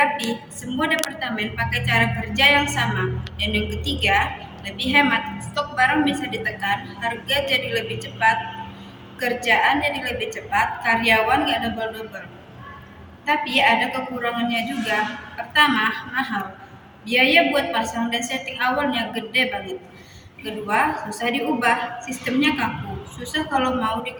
semua departemen pakai cara kerja yang sama. Dan yang ketiga, lebih hemat, stok barang bisa ditekan, harga jadi lebih cepat, kerjaan jadi lebih cepat, karyawan gak double-double. Tapi ada kekurangannya juga. Pertama, mahal. Biaya buat pasang dan setting awalnya gede banget. Kedua, susah diubah, sistemnya kaku, susah kalau mau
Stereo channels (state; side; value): identical; both; correlation 1.00